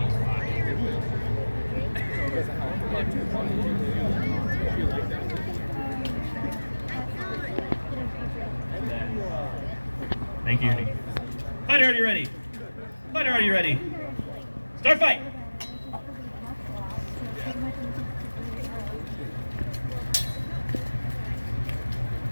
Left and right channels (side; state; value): both; inverted; correlation -1.00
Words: each side? Thank you. Fighter, are you ready? Fighter, are you ready? Start fight!